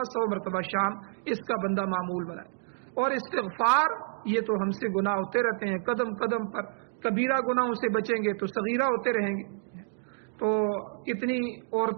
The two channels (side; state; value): left; silent; digital silence